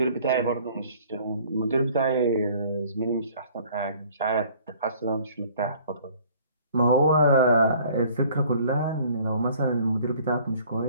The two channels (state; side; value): inverted; both; correlation -0.54